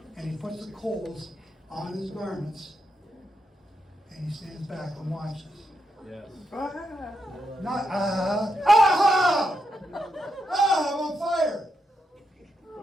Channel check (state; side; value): normal; both; correlation 0.83